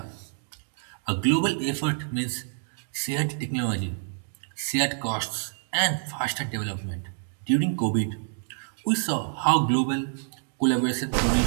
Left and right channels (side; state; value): left; silent; digital silence